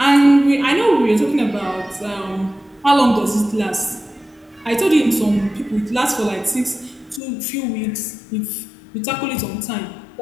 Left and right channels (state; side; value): drops out; right; at 7.2 s